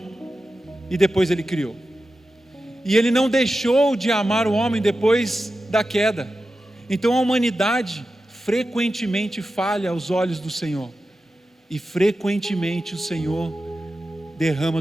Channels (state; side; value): normal; both; correlation 0.92